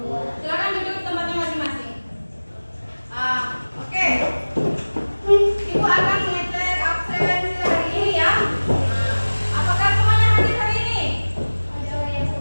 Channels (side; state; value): both; inverted; correlation -1.00